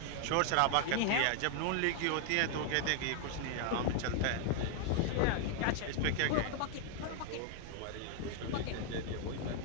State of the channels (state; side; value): different; both; correlation 0.00